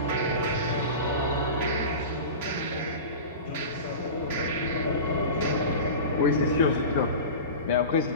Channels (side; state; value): both; inverted; correlation -0.31